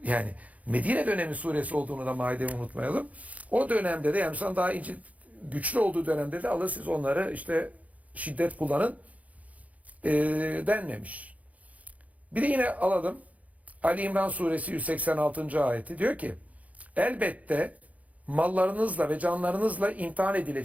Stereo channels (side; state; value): left; late; 0.071 ms